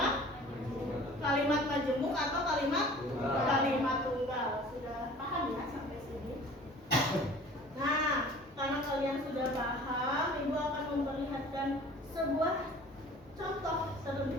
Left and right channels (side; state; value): both; normal; correlation 0.47